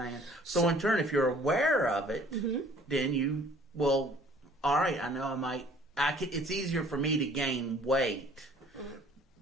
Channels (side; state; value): both; normal; correlation 0.54